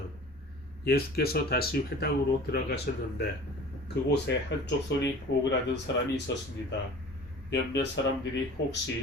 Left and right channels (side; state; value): both; normal; correlation 0.42